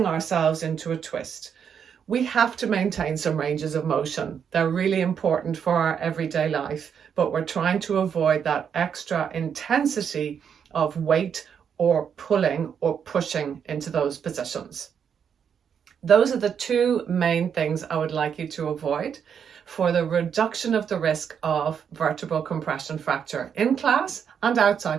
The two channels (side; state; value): left; quieter; 7.6 dB